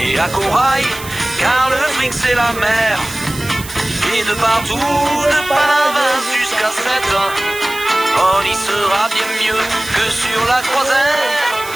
à Corail, car le fric c'est la mer. Et de partout, de Palavas jusqu'à 7, on y sera bien mieux que sur la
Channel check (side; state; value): right; noise; hiss, 13 dB below the sound